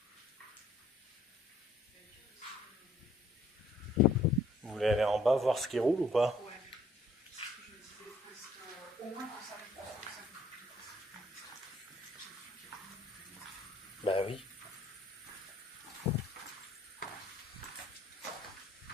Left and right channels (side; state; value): both; normal; correlation 0.62